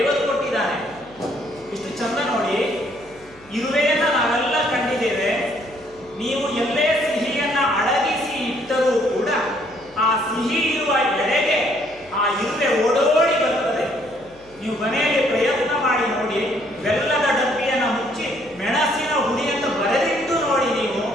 ಕೊಟ್ಟಿದ್ದಾನೆ. ಇಷ್ಟು ಚಂದ ನೋಡಿ. ಇರುವೆಯನ್ನು ನಾವೆಲ್ಲ ಕಂಡಿದ್ದೇವೆ. ನೀವು ಎಲ್ಲೇ ಸಿಹಿಯನ್ನ ಅಡಗಿಸಿ ಇಟ್ಟರೂ ಕೂಡ ಆ ಸಿಹಿ ಇರುವ ಎಡೆಗೆ ಆ ಇರುವೆ ಓಡೋಡಿ ಬರ್ತದೆ. ನೀವು ಮನೆಯಲ್ಲಿ ಪ್ರಯತ್ನ ಮಾಡಿ ನೋಡಿ. ಬೆಲ್ಲದ ಡಬ್ಬಿಯನ್ನು ಮುಚ್ಚಿ ಮೆಣಸಿನ ಹುಡಿಯನ್ನು ಬರೆದಿಟ್ಟು ನೋಡಿ. ನೀವು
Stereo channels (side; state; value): left; noise; hum, 27 dB below the sound